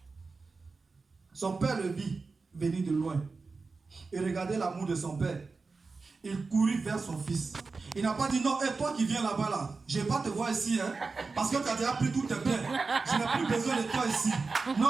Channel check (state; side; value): quieter; left; 4.2 dB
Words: son père le vit venir de loin. Et regardez l'amour de son père. Il courut vers son fils. Il n'a pas dit non, et toi qui viens là-bas là, je ne vais pas te voir ici, hein, parce que tu as déjà pris tout tes biens. Je n'ai plus besoin de toi ici.